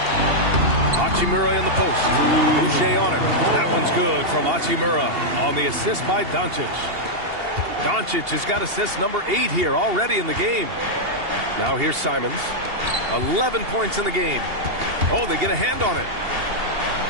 Hachimura in the post. Boucher on it. That one's good from Hachimura on the assist by Doncic. Doncic has got assist number 8 here already in the game. Now here's Simons. 11 points in the game. Oh, they get a hand on it.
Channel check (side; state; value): left; late; 2.8 ms